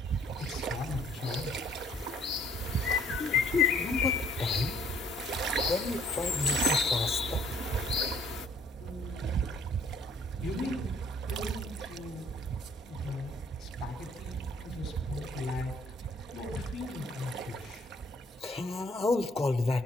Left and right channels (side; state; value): both; normal; correlation 0.59